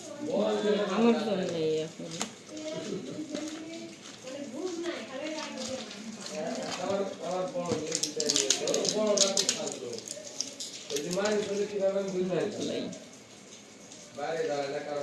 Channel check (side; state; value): both; identical; correlation 1.00